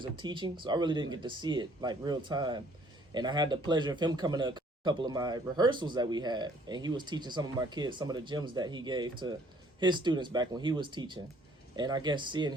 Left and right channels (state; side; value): normal; both; correlation 0.60